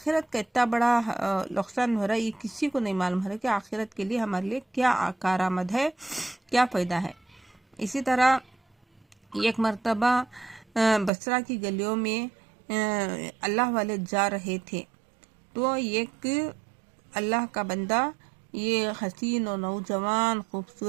کا اتنا بڑا نقصان ہو رہا ہے، یہ کسی کو نہیں معلوم ہو رہا ہے کہ آخرت کے لیے ہمارے لیے کیا کارآمد ہے، کیا فائدہ ہے۔ اسی طرح ایک مرتبہ بصرہ کی گلیوں میں اللہ والے جا رہے تھے، تو ایک اللہ کا بندہ، یہ حسین و نوجوان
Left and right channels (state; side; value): drops out; left; at 11.1 s